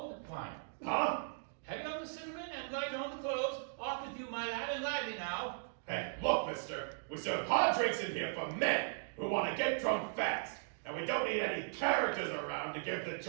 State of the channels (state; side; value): silent; left; digital silence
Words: wine. Huh? Heavy on the cinnamon and light on the cloves. Off with you, my lad, and lively now. Hey, look, mister. We serve hard drinks in here for men who want to get drunk fast. And we don't need any characters around to give the